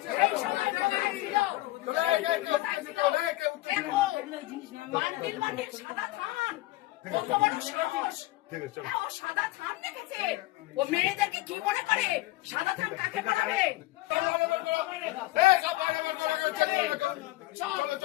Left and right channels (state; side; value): quieter; right; 18.7 dB